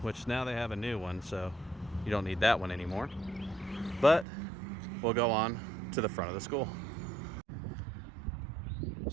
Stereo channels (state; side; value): drops out; left; at 4.2 s